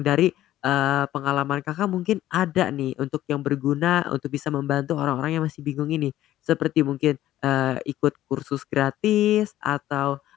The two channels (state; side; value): quieter; right; 13.7 dB